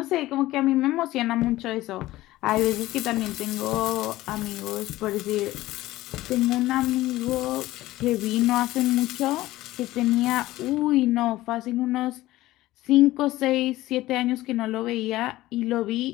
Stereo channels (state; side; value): quieter; right; 16.8 dB